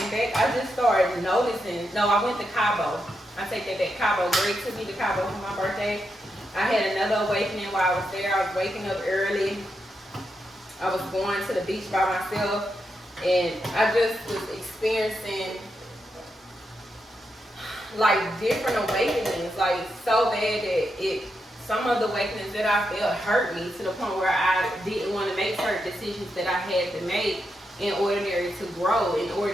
back, I just started noticing. No, I went to Cabo. I take that back. Cabo. Greg took me to Cabo for my birthday. I had another awakening while I was there. I was waking up early. I was going to the beach by myself. And I just was experiencing like different awakenings, like so bad that some of the awakenings that I felt hurt me to the point where I didn't want to make certain decisions that I had to make in order to grow, in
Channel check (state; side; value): normal; both; correlation 0.84